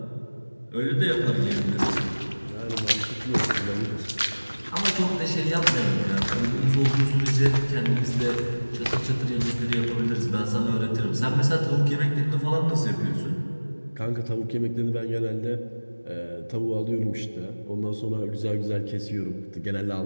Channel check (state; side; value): inverted; both; correlation -1.00